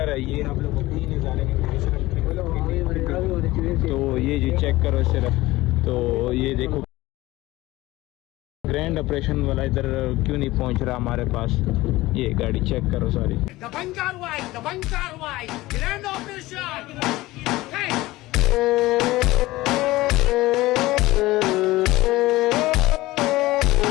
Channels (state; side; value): quieter; right; 18.5 dB